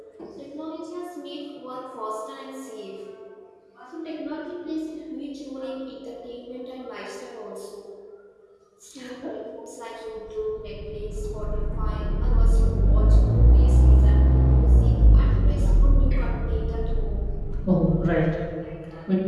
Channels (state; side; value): identical; both; correlation 1.00